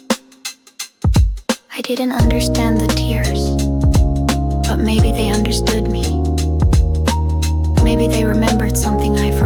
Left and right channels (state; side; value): identical; both; correlation 1.00